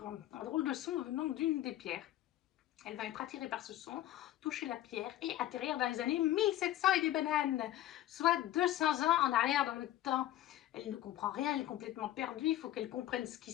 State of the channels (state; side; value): quieter; right; 13.5 dB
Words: un drôle de son venant d'une des pierres. Elle va être attirée par ce son, toucher la pierre et atterrir dans les années 1700 et des bananes, soit 200 ans en arrière dans le temps. Elle ne comprend rien, elle est complètement perdue, il faut qu'elle comprenne ce qui